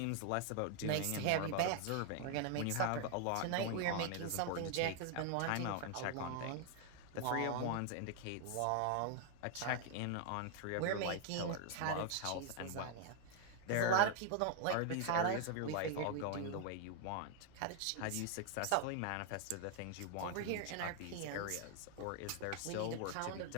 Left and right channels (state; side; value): different; both; correlation 0.00